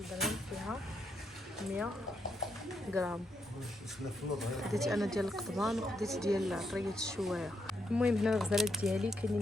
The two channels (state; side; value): normal; both; correlation 0.79